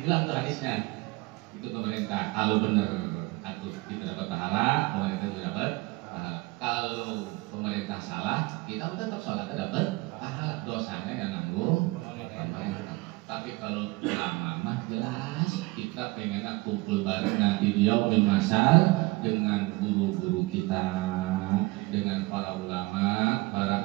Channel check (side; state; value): left; quieter; 23.0 dB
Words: bilang tuh hadisnya itu pemerintah kalau benar atau kita dapat pahala, pemerintah juga dapat pahala. Kalau pemerintah salah, kita tetap sholat dapat pahala. Dosanya yang nanggung pemerintah. Tapi kalau ulama mah jelas kita pengen kumpul bareng nanti di yaumil masal dengan guru-guru kita, dengan para ulama,